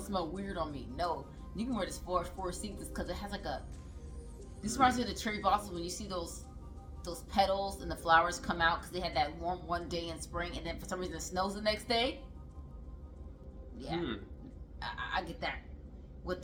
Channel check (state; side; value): identical; both; correlation 1.00